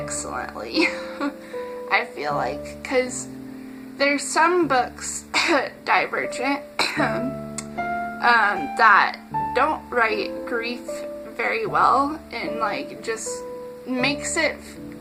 I feel like, because there's some books, Divergent, that don't write grief very well, and, like, just makes you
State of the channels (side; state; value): both; identical; correlation 1.00